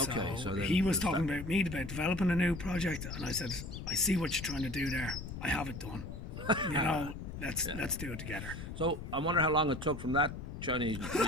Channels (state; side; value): noise; left; rumble, 8 dB below the sound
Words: so he was talking about me about developing a new project, and I said, I see what you're trying to do there. I have it done. You know, let's do it together. So I wonder how long it took from that Chinese